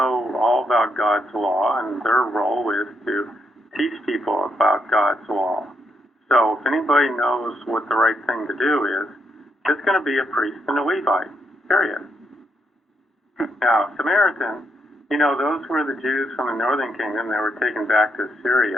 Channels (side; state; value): both; normal; correlation 0.79